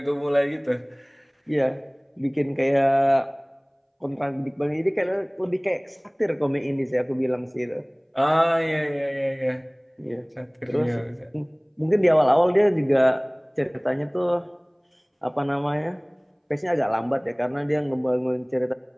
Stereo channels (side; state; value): both; identical; correlation 1.00